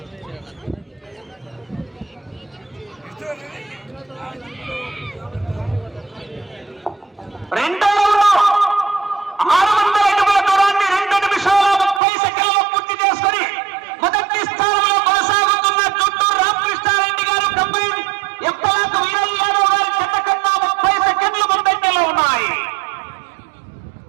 రెండో 600 అడుగుల దూరాన్ని 2 నిమిషాల 30 సెకండ్లలో పూర్తి చేసుకుని మొదటి స్థానంలో కొనసాగుతున్న చుట్టూరు రామకృష్ణారెడ్డి గారు కంపెనీ ఎంపలాకు వీరయ్య యాదవ్ గారి జత కన్నా 30 సెకండ్లు ముందంజలో ఉన్నాయి.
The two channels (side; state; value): left; drops out; at 12.0 s